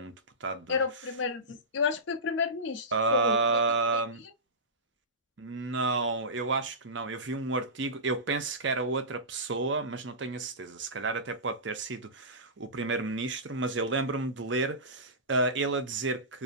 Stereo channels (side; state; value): both; normal; correlation -0.19